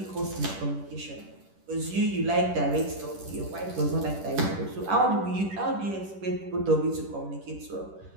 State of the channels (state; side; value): late; left; 10 ms